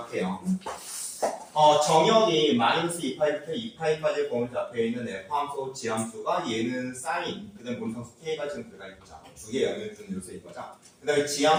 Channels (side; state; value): both; identical; correlation 1.00